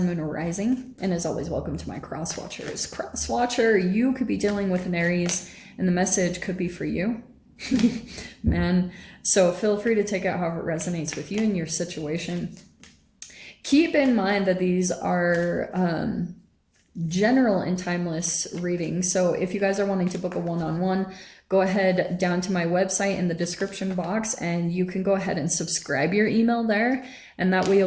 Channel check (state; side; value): identical; both; correlation 1.00